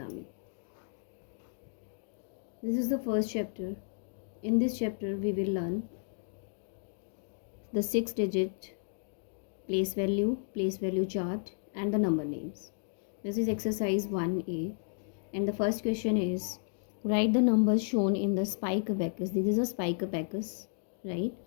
This is the first chapter. In this chapter we will learn the 6-digit place value chart and the number names. This is exercise 1A and the first question is write the numbers shown in the spike abacus. This is a spike abacus, right?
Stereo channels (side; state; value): right; silent; digital silence